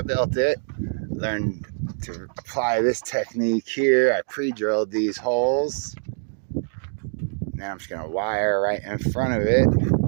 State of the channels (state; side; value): silent; left; digital silence